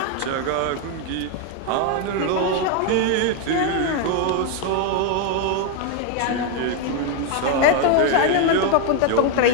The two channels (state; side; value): different; both; correlation 0.01